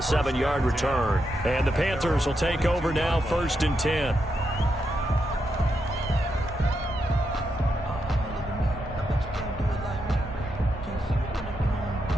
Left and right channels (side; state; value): both; normal; correlation 0.83